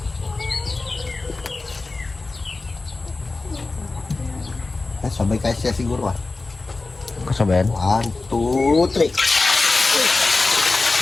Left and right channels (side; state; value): right; quieter; 3.5 dB